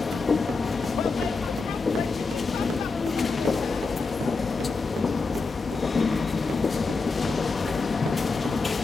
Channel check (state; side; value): quieter; right; 4.1 dB